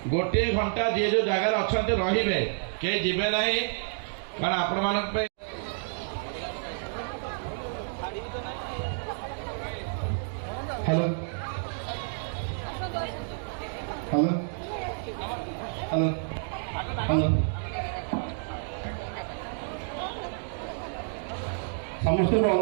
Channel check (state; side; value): silent; left; digital silence